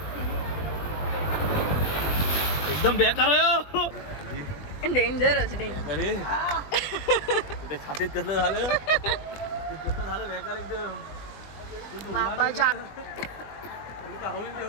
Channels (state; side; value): late; right; 20 ms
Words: एकदम बेकार आहे. डेंजरस अरे छातीत कसलं झालं. कसलं झालं बेकार एकदम. बाबाच्या